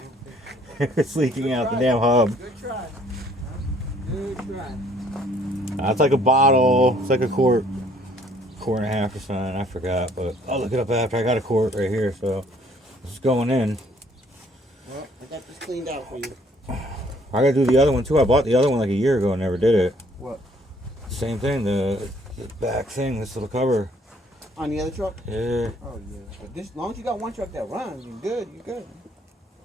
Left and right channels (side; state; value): both; normal; correlation 0.61